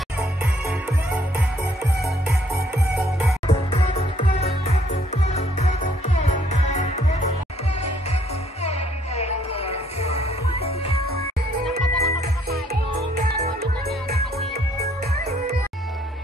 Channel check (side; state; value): both; normal; correlation 0.66